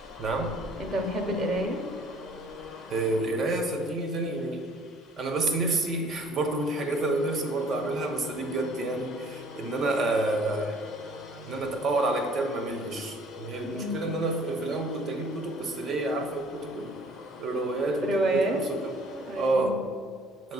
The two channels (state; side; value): normal; both; correlation 0.56